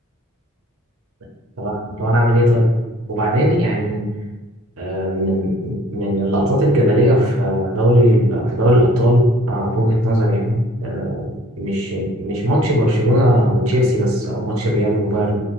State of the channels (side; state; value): both; normal; correlation 0.57